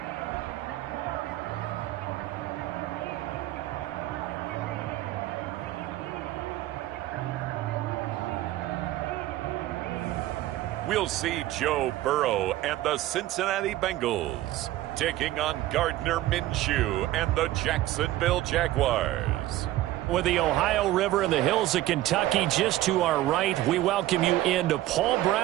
We'll see Joe Burrow and the Cincinnati Bengals taking on Gardner Minshew and the Jacksonville Jaguars. With the Ohio River and the hills of Kentucky just to our right, we welcome you into Paul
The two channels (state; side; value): quieter; left; 15.4 dB